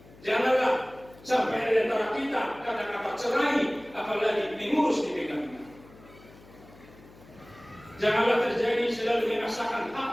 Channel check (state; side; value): noise; left; hum, 23 dB below the sound